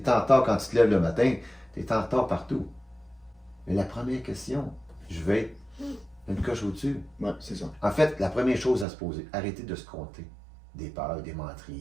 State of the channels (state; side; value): drops out; left; at 8.8 s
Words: es en retard quand tu te lèves le matin. Tu es en retard partout. Mais la première question, je vais être une coche au-dessus. Ouais, c'est ça. En fait, la première chose à se poser, arrêtez de se compter des peurs, des